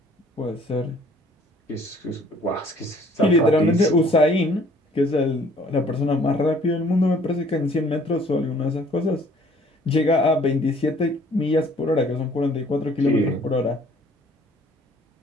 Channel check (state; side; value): normal; both; correlation 0.57